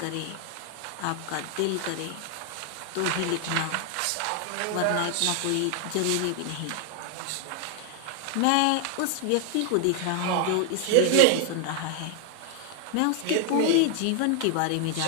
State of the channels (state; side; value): different; both; correlation 0.00